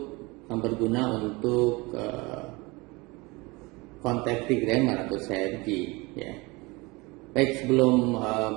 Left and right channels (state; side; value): quieter; left; 24.5 dB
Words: yang berguna untuk contemporary grammar atau CFG ya. Baik, sebelum